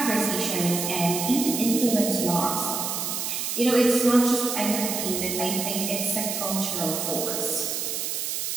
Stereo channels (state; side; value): noise; right; hiss, 2 dB below the sound